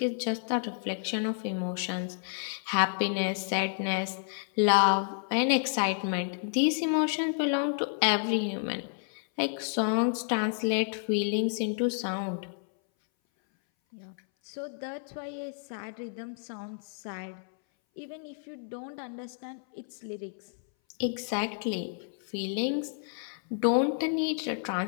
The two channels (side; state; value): right; silent; 57 dB below the other